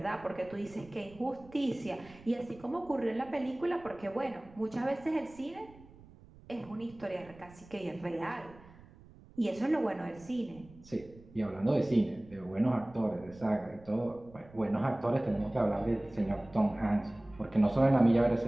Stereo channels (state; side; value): noise; right; rumble, 22 dB below the sound